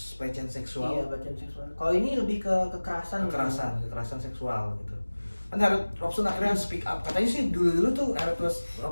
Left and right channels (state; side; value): inverted; both; correlation -1.00